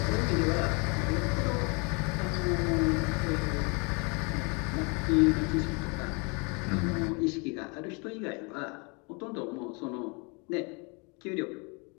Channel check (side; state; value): right; quieter; 32.0 dB